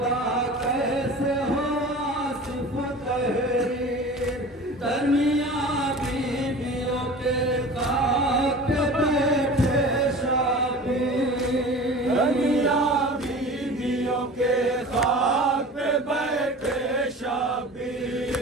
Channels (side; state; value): both; normal; correlation 0.38